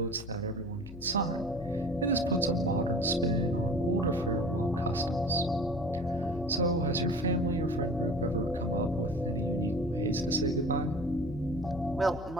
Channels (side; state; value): left; noise; hum, 14 dB below the sound